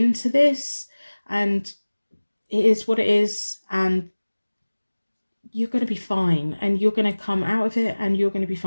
this, and it is what it is, and you're going to be fine, and you're going to come out of it, and you're going to be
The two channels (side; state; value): both; inverted; correlation -1.00